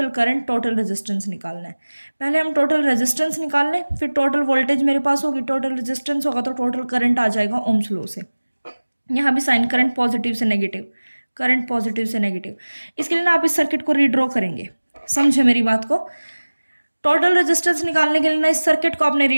करंट, टोटल रेजिस्टेंस निकालना है। पहले हम टोटल रेजिस्टेंस निकाल लें, फिर टोटल वोल्टेज मेरे पास होगी, टोटल रेजिस्टेंस होगा तो टोटल करंट आ जाएगा ओम्स लॉ से। यहाँ भी साइन करंट पॉजिटिव से नेगेटिव, करंट पॉजिटिव से नेगेटिव। इसके लिए ना आप इस सर्किट को रीड्रॉ करेंगे, समझे मेरी बात को। टोटल रेजिस्टेंस निकालने के लिए ना इस सर्किट को आपने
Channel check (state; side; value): inverted; both; correlation -1.00